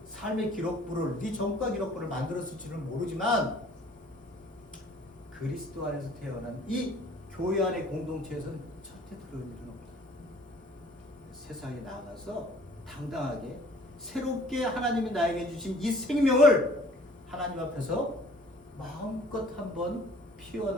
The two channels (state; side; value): normal; both; correlation 0.53